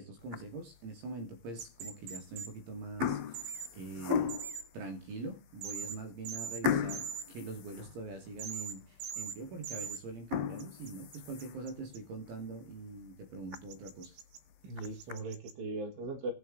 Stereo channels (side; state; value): left; late; 15 ms